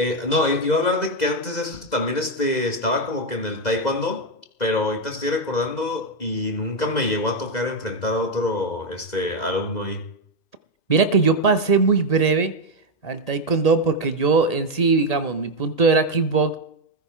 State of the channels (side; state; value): right; late; 2.0 ms